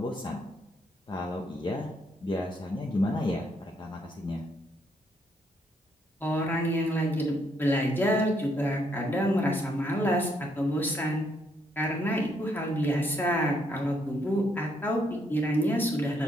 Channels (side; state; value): both; normal; correlation 0.73